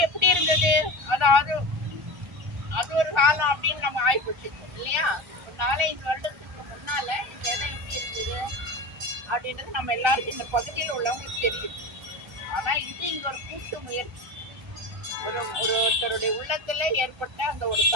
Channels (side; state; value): left; late; 1.4 ms